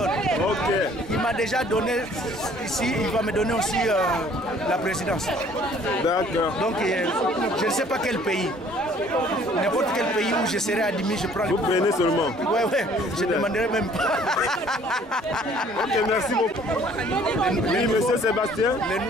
Ok. Il m'a déjà donné ici, il va me donner aussi la présidence. D'accord. Donc, je ne sais pas quel pays. N'importe quel pays où je serai admis, je prends le pouvoir. Vous prenez seulement. Ouais, ouais, je ne demanderai même pas. Ok, merci beaucoup. Oui, monsieur Sébastien.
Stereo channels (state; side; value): normal; both; correlation 0.56